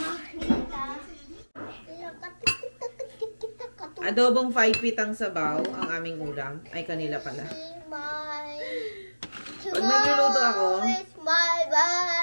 Adobong 5 feet ang sabaw, ang aming ulam. Ay, kanila pala. Pag nagluluto ako, it's my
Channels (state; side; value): inverted; both; correlation -1.00